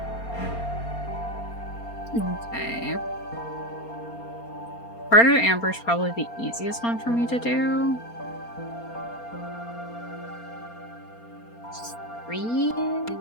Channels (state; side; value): late; right; 4.3 ms